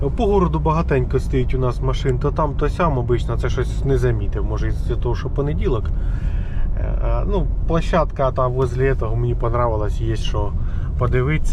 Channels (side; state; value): both; identical; correlation 1.00